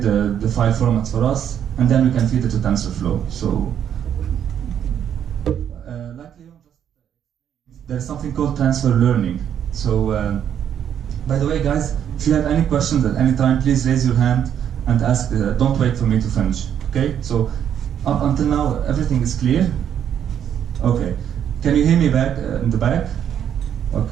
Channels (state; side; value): quieter; left; 9.3 dB